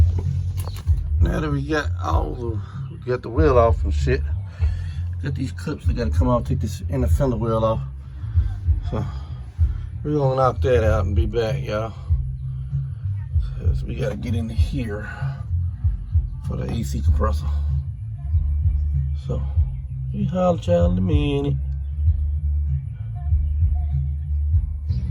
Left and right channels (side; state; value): both; identical; correlation 1.00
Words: Now that we got the wheel off and shit, got these clips that gotta come off, take this inner fender wheel off. So, we're gonna knock that out and be back, y'all. So we gotta get into here for the AC compressor. So, we holler at y'all in a minute.